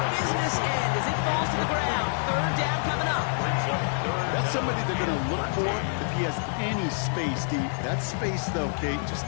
business end as it falls to the ground. 3rd down coming up. That's somebody they're going to look for if he has any space deep. That space, though, Kate, just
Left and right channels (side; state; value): right; silent; 60 dB below the other